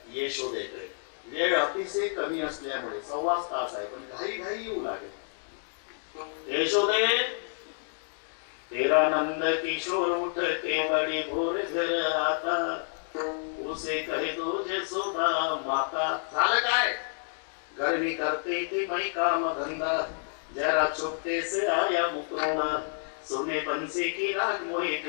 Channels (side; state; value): right; silent; digital silence